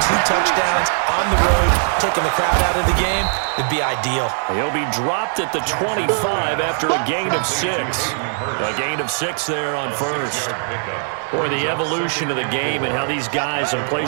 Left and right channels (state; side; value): silent; left; digital silence